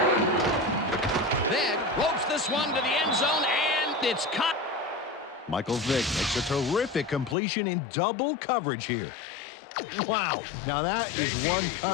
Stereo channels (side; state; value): right; drops out; at 7.4 s